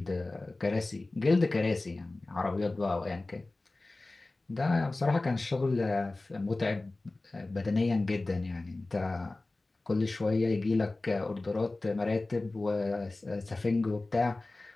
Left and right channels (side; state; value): right; quieter; 3.1 dB